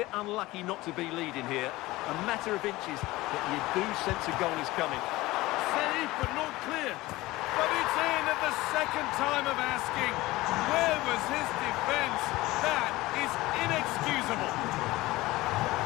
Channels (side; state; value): right; quieter; 19.1 dB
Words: unlucky not to be leading here. A matter of inches, but you do sense a goal is coming. Save, but not clear. But it's in at the second time of asking. Where was his defence? That is inexcusable.